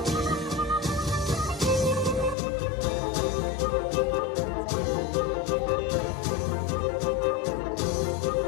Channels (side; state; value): right; drops out; at 2.4 s